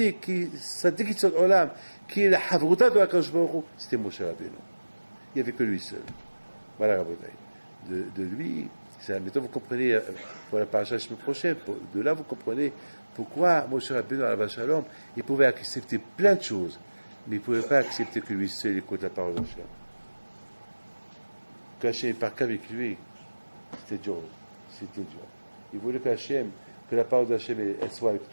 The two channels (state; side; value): inverted; both; correlation -1.00